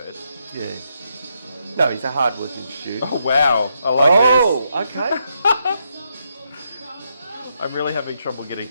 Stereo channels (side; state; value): both; inverted; correlation -0.80